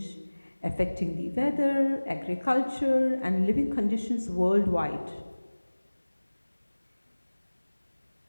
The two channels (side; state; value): both; inverted; correlation -1.00